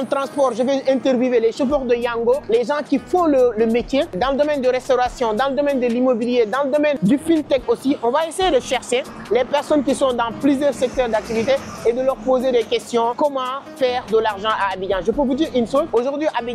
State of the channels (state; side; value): identical; both; correlation 1.00